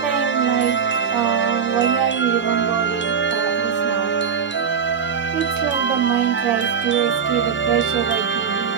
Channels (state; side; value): quieter; left; 6.9 dB